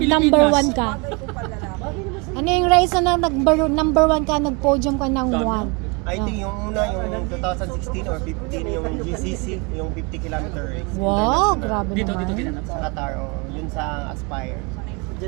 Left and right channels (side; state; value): left; quieter; 30.5 dB